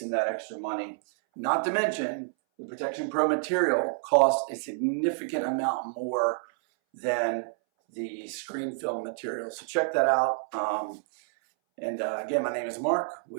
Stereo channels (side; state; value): left; silent; 59 dB below the other